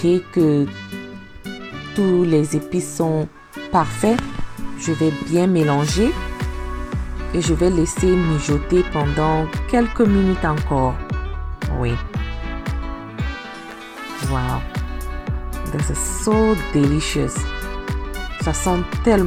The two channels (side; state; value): both; identical; correlation 1.00